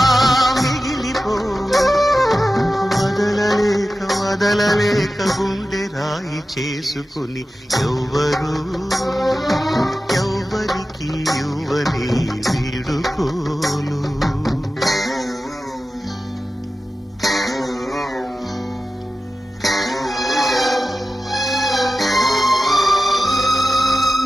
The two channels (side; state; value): both; normal; correlation 0.94